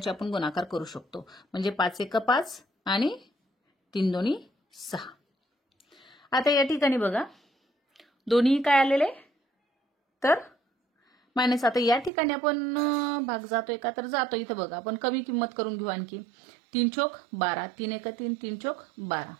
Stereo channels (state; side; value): drops out; left; at 12.1 s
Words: आपण गुणाकार करू शकतो. म्हणजे 5×1 5 आणि 3×2 6. आता या ठिकाणी बघा दोन्ही काय आलेले तर मायनस. आता या ठिकाणी आपण भाग जातोय का, तर जातो. इथं बघा आपण कमी किंमत करून घेऊ आणखी. 3×4 12, 3×1 3, 3×4 12.